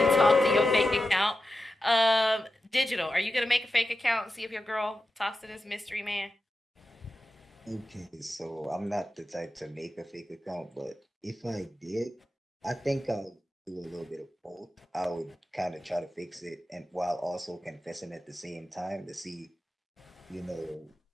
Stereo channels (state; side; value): normal; both; correlation 0.91